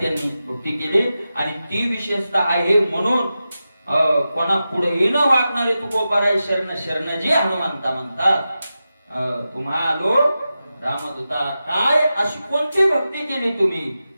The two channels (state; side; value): inverted; both; correlation -0.92